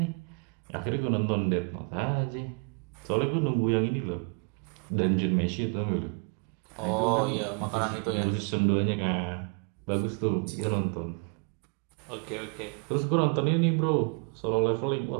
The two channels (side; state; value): left; quieter; 35.7 dB